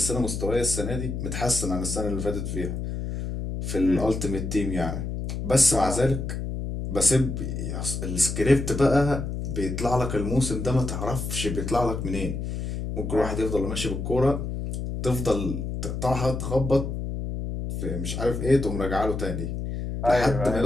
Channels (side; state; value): left; noise; hum, 4 dB below the sound